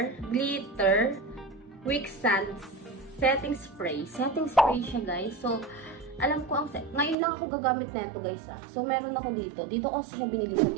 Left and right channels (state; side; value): drops out; left; at 7.2 s